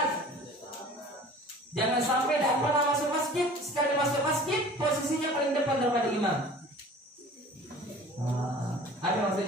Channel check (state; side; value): normal; both; correlation 0.45